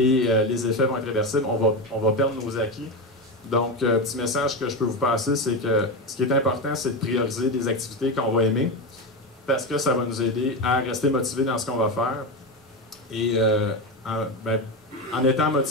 effets vont être réversibles, on va perdre nos acquis. Donc, petit message que je peux vous passer, c'est que ce qui est important, c'est de prioriser des activités qu'on va aimer, parce que ça va nous aider à rester motivés dans ce qu'on va faire. Et en étant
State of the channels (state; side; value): normal; both; correlation 0.16